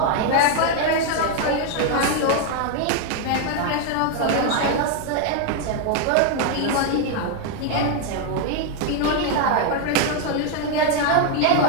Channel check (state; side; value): different; both; correlation 0.01